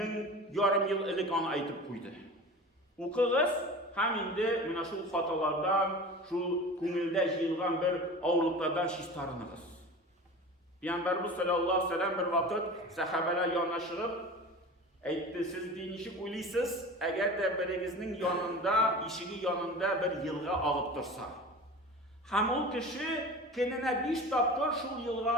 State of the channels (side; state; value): both; normal; correlation 0.35